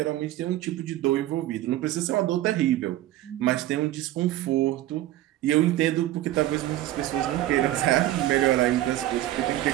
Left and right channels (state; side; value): quieter; left; 14.6 dB